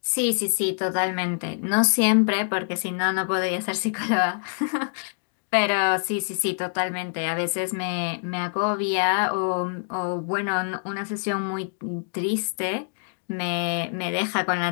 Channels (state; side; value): silent; right; digital silence